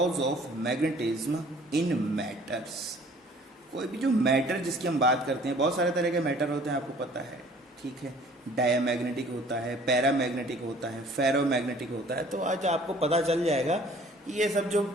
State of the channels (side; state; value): both; normal; correlation 0.53